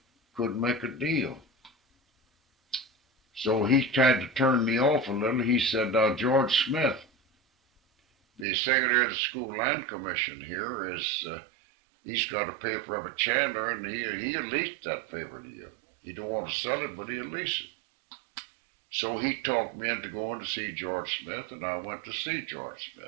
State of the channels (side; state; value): left; drops out; at 8.5 s